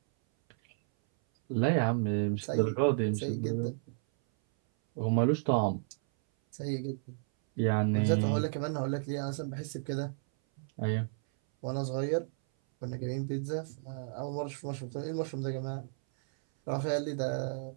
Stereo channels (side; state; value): left; silent; 56 dB below the other